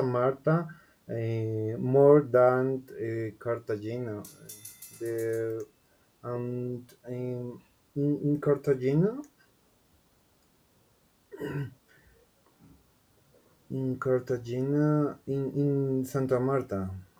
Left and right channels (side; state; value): both; identical; correlation 1.00